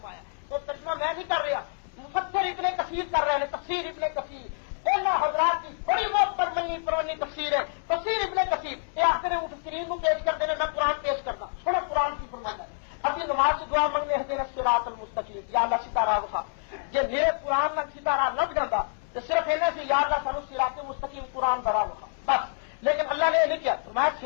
تو ترجمہ میں نہیں کر رہا، مفسر ابن کثیر کر رہے ہیں، تفسیر ابن کثیر ان حضرات کی بڑی بہت پرمنی پرانی تفسیر ہے، تفسیر ابن کثیر یہ آخر مفسرین کو پیش کرتے ہیں، میں قرآن پیش کرتا تھوڑا قرآن کی فرمانا ہے۔ ابھی نماز کی دعا منگنے اہدنا الصراط المستقیم، یا اللہ سیدھا راہ دکھا، جی میرے قرآن نال سیدھا راہ لگ جاتا تو صرف انہیں سے یا اللہ سانو صراط مستقیم قرآن دا راہ دکھا بس، لیکن اللہ نے یہ نہیں کیا، فرمایا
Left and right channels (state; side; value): silent; right; digital silence